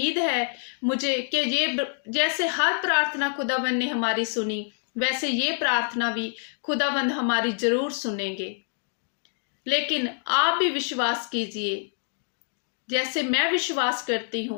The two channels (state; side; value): silent; right; digital silence